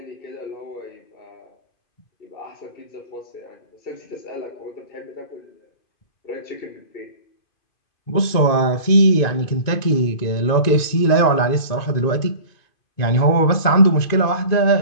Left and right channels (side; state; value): right; late; 2.5 ms